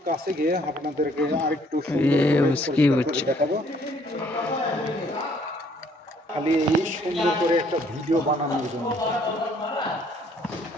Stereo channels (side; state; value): both; normal; correlation 0.63